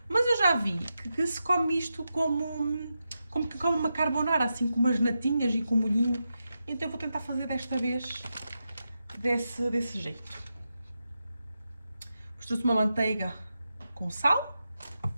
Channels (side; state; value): both; inverted; correlation -0.88